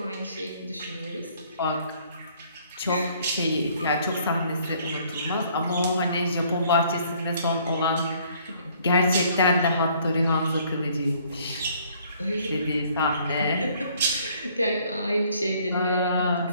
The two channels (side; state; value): both; inverted; correlation -0.61